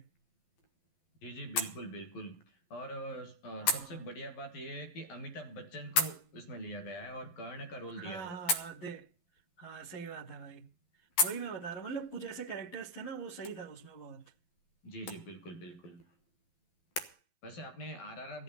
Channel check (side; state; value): right; late; 11 ms